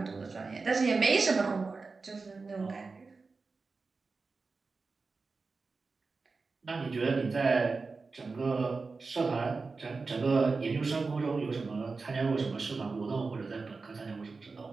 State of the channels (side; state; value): left; quieter; 4.2 dB